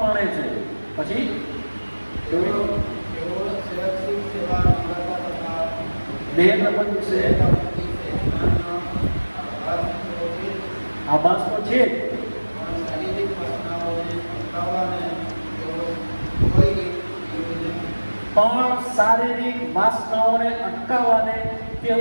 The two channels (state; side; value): inverted; both; correlation -1.00